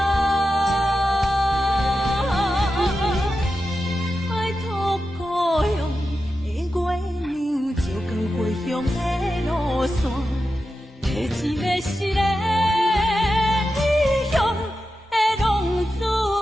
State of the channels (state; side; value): normal; both; correlation 0.91